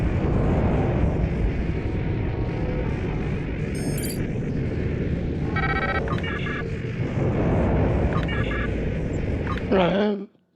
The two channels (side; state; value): both; identical; correlation 1.00